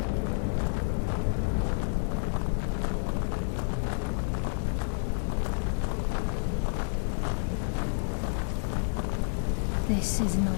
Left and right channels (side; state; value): right; silent; digital silence